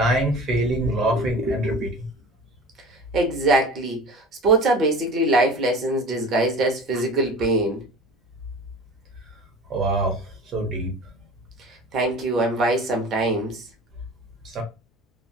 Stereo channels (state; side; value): normal; both; correlation 0.38